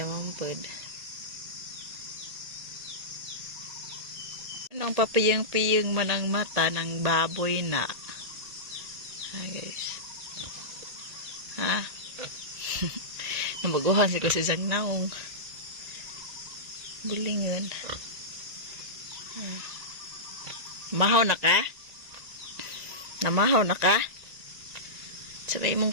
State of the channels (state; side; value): late; left; 1.9 ms